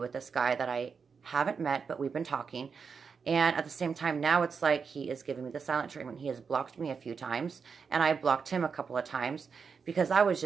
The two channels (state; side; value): quieter; left; 5.7 dB